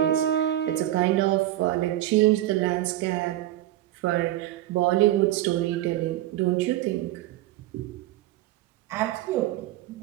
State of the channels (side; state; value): left; quieter; 14.5 dB